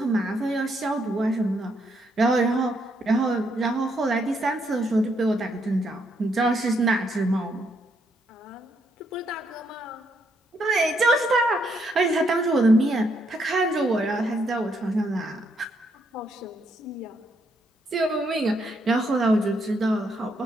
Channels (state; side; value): normal; both; correlation 0.75